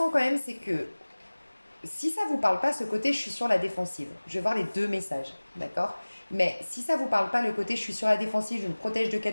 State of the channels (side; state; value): both; inverted; correlation -1.00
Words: quand même, c'est que si ça vous parle pas, ce côté je suis sur la défensive, je vais voir les deux messages, d'accord? Mais si ça vous parle pas, le côté je suis sur la défensive, je me protège de